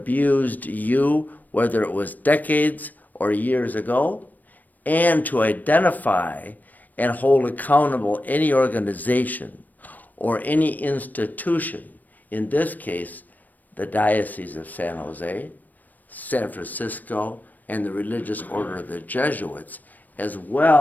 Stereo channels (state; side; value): late; right; 0.085 ms